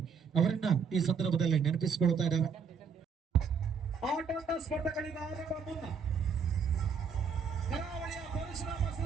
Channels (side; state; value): left; quieter; 6.0 dB